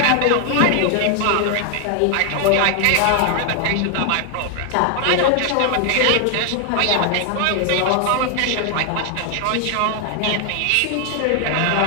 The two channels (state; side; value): different; both; correlation 0.00